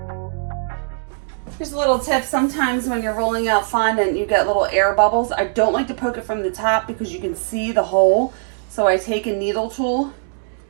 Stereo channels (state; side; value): silent; left; digital silence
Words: Here's a little tip. Sometimes when you're rolling out fondant, you get little air bubbles. I don't like to poke it from the top because you can see the hole. So I take a needle tool,